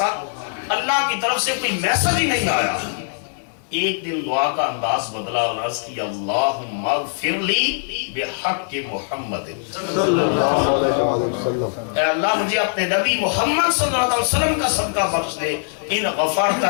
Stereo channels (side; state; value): right; silent; 65 dB below the other